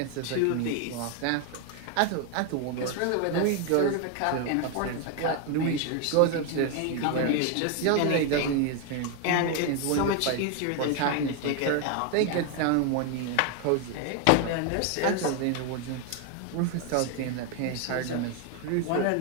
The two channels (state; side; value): different; both; correlation 0.01